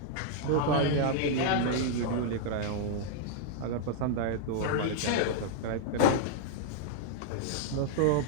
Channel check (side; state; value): both; different; correlation -0.01